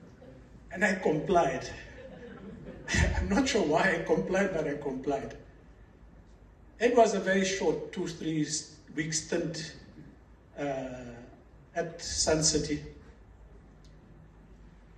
And I complied. I'm not sure why I complied, but I complied. It was a very short 2-3 week stint at Sun City,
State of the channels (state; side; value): identical; both; correlation 1.00